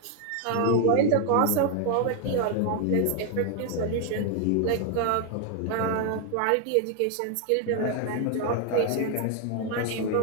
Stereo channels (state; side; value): different; both; correlation 0.00